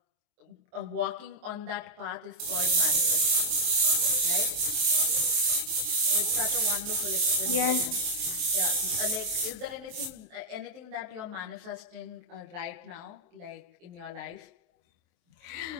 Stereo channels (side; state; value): left; late; 23 ms